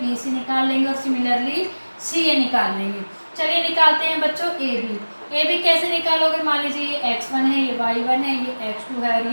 सी निकाल लेंगे और सिमिलरली सी ए निकाल लेंगे। चलिए निकालते हैं बच्चों ए बी। ए बी कैसे निकालोगे? मान लीजिए ये x1 है, ये y1 है, ये x2 है और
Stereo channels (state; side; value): inverted; both; correlation -1.00